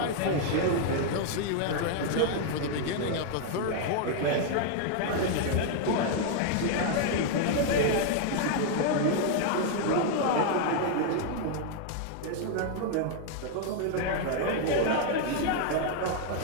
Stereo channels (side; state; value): both; different; correlation 0.00